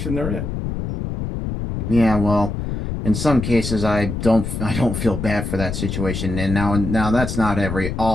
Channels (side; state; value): left; noise; rumble, 4 dB below the sound